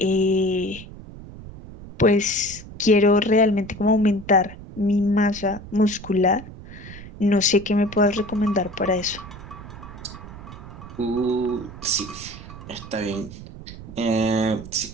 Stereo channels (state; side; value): noise; right; rumble, 15 dB below the sound